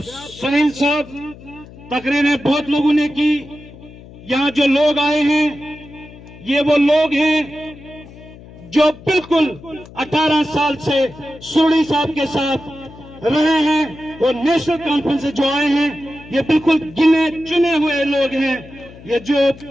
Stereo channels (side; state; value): left; noise; hum, 19 dB below the sound